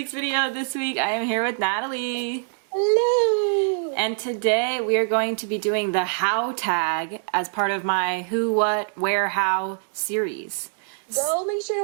video. This week I am here with Natalie. Hello! And today we are going to be doing the how tag as part of my who, what, where, how series. Go make sure to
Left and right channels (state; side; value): silent; left; digital silence